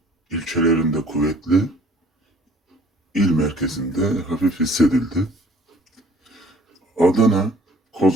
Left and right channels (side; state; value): both; normal; correlation 0.55